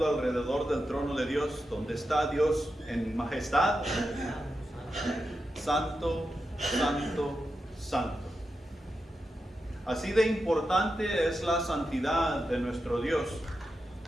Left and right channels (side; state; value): both; normal; correlation 0.89